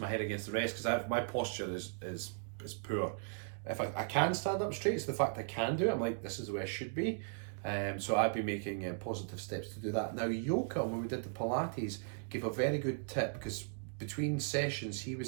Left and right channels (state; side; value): silent; left; digital silence